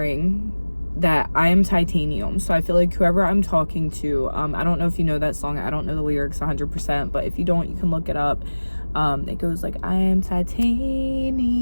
that I am titanium. So I feel like whoever I'm talking to, I don't know if you know that song. I don't know the lyrics 100%, but if you don't, you can look it up. It goes like, I am titanium.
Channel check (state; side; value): inverted; both; correlation -1.00